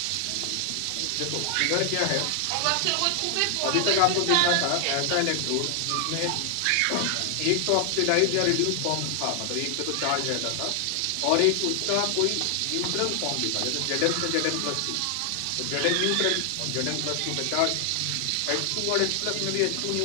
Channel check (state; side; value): different; both; correlation 0.00